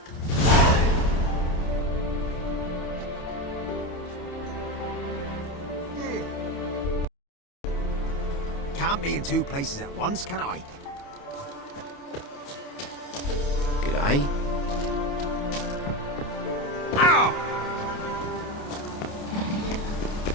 Can't be in two places at once, can I? G'day. Ow!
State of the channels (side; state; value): right; late; 28 ms